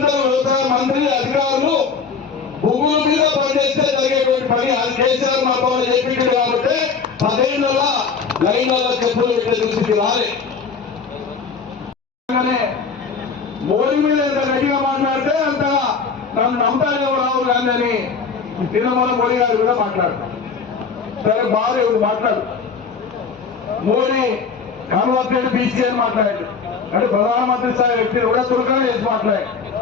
వ్యవసాయ మంత్రి అధికారులు భూముల మీద పనిచేస్తే జరిగేటువంటి పని. అది కేసీఆర్ మాతో చెప్పించాడు కాబట్టి 10 ఏళ్ళ లైన్లలో చెప్పులు పెట్టే దుస్థితి రాలే. మోడీ మీద ఎంత గట్టిగా మాట్లాడితే అంతగా నన్ను నమ్ముతారేమో రావు గాంధీ అని నిన్న మోడీ గారి మీద మాట్లాడతాం. సరే బాగా ఇప్పుడు మాట్లాడు. మోడీ కన్వర్టెడ్ బీసీ అని మాట్లాడాడు. అంటే ప్రధానమంత్రి స్థాయి వ్యక్తి కూడా చురుకనే చేసి మాట్లాడాడు.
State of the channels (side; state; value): right; quieter; 5.5 dB